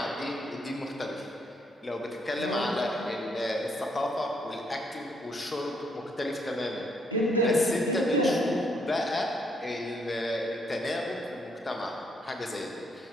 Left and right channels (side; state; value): both; normal; correlation 0.72